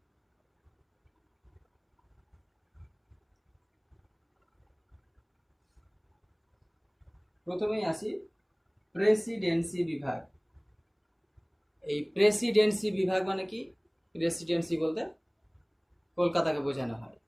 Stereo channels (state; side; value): identical; both; correlation 1.00